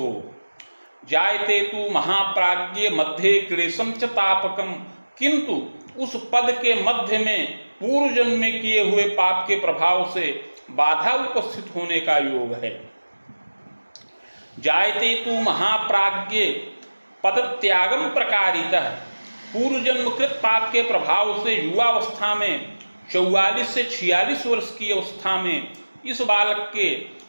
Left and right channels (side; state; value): both; inverted; correlation -1.00